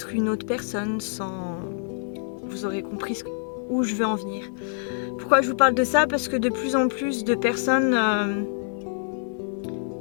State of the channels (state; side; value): silent; right; digital silence